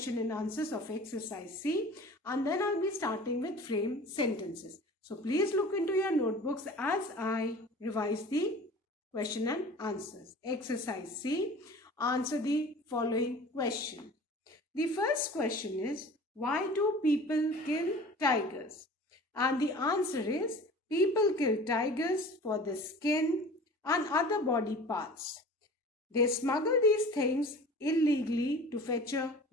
and answers of exercise C, and then I'll be starting with frame sentences. So please look into your notebooks as I revise the question and answers. Exercise C, answer the following question. The first question is, why do people kill tigers? And the answer is, people kill tigers for the skin and other body parts. They smuggle these things illegally to fetch a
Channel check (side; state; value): both; normal; correlation 0.42